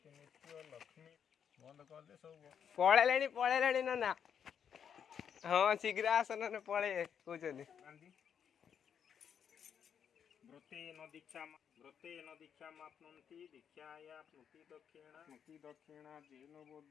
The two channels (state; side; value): quieter; right; 7.9 dB